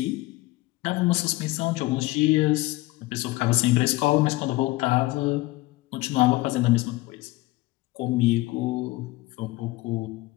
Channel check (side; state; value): right; quieter; 20.0 dB